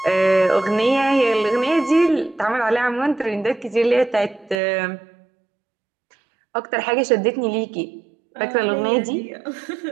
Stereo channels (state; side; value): drops out; left; at 4.5 s